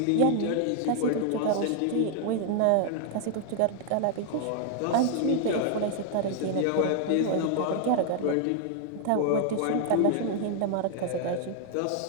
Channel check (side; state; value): both; different; correlation 0.00